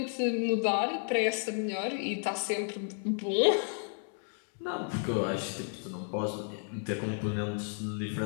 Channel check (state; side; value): silent; right; 56 dB below the other